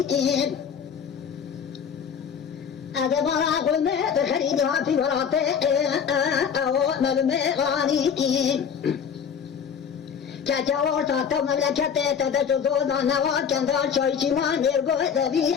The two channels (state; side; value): quieter; right; 7.3 dB